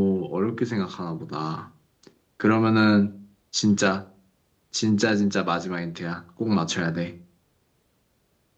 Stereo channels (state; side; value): identical; both; correlation 1.00